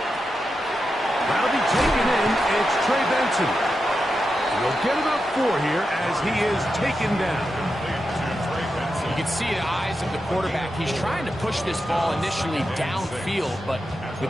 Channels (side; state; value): both; normal; correlation 0.88